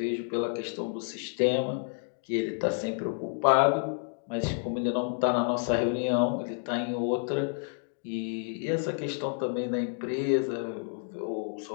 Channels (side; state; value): right; silent; 58 dB below the other